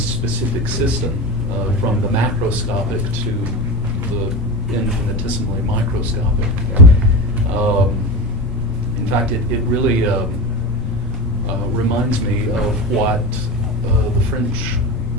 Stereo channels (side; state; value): both; normal; correlation 0.24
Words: system, from the macroscopic to the infinitesimally microscopic. In fact, it really reminds me of what the French